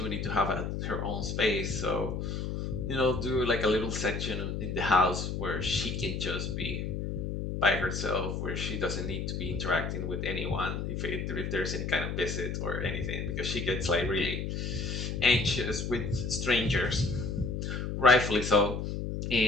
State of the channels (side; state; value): left; noise; hum, 3 dB below the sound